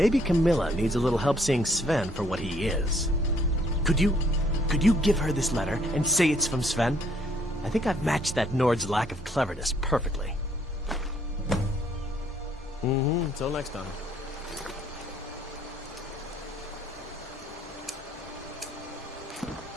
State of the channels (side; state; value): both; normal; correlation 0.65